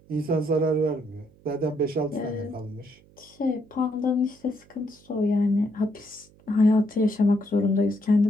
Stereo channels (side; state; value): right; noise; hum, 28 dB below the sound